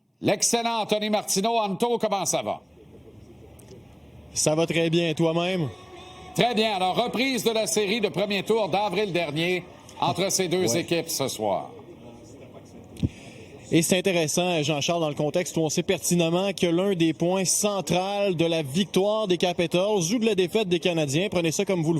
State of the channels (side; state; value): both; identical; correlation 1.00